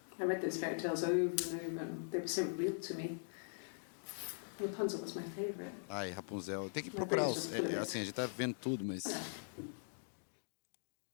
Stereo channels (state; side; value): silent; right; digital silence